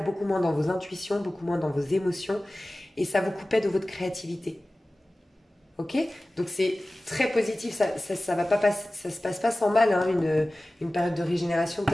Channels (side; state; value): both; normal; correlation 0.97